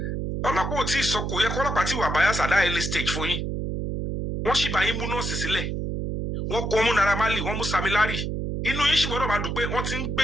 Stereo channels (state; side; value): noise; right; hum, 3 dB below the sound